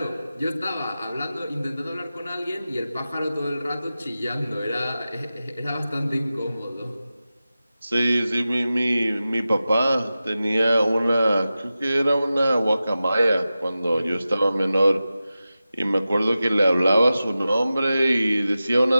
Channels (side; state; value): both; inverted; correlation -0.94